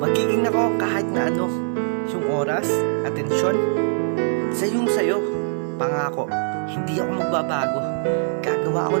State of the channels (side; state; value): left; silent; 57 dB below the other